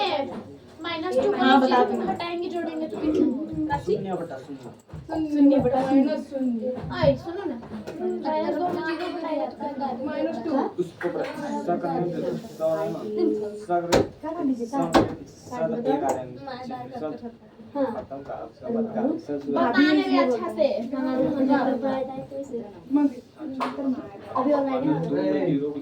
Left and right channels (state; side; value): identical; both; correlation 1.00